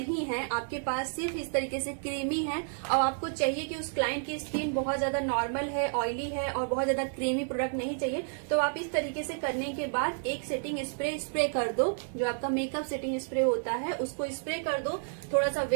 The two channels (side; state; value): left; silent; 57 dB below the other